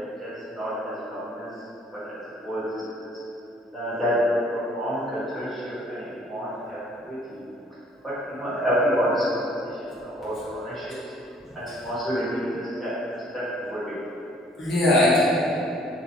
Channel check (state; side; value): normal; both; correlation 0.58